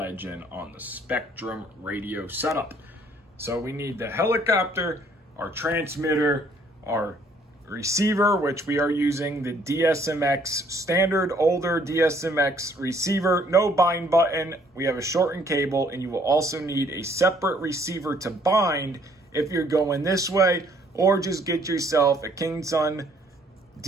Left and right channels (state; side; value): normal; both; correlation 0.63